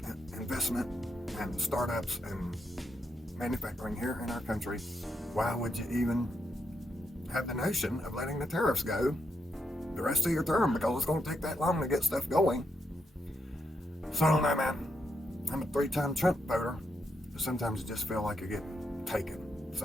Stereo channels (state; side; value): normal; both; correlation 0.81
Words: investment and startups and manufacturing here in our country. Why would you even have the notion of letting the tariffs go the rest of your term? Because it's going to take that long to get stuff going. So I don't know, man. I'm a 3-time Trump voter, but sometimes you just feel like you're getting taken.